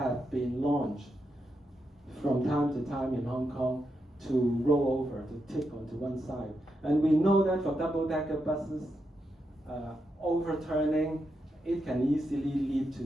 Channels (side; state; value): both; normal; correlation 0.84